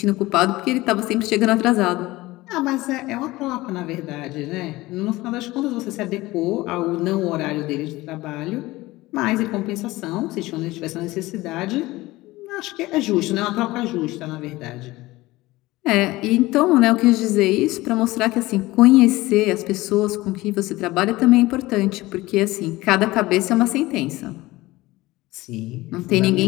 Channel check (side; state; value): right; quieter; 19.1 dB